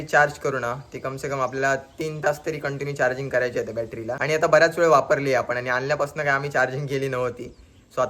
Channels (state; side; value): identical; both; correlation 1.00